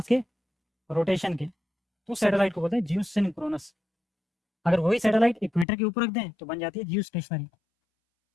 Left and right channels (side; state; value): right; drops out; at 5.7 s